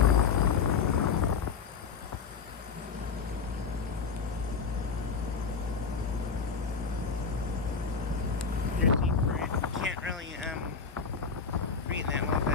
There's heat for it. Can't really read that well,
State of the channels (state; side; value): quieter; right; 5.6 dB